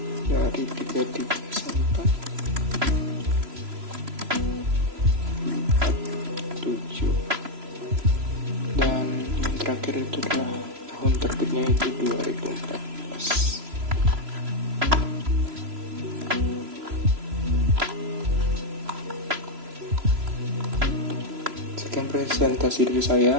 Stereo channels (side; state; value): left; late; 3.0 ms